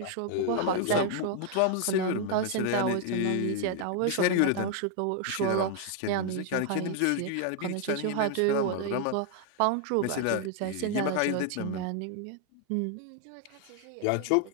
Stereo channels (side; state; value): both; different; correlation 0.00